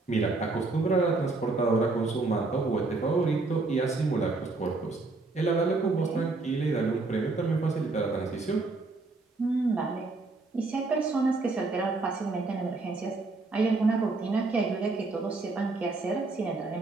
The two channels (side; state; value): left; quieter; 3.5 dB